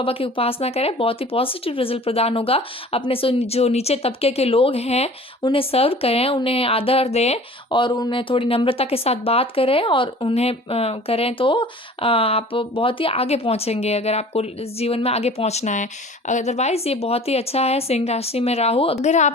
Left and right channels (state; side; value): normal; both; correlation 0.45